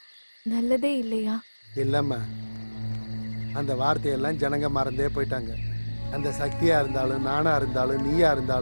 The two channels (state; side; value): inverted; both; correlation -1.00